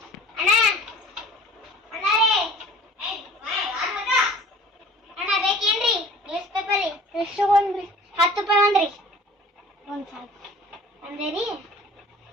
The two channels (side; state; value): both; normal; correlation 0.47